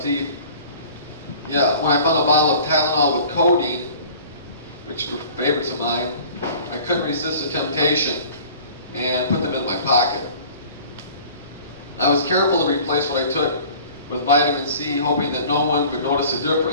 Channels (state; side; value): inverted; both; correlation -0.46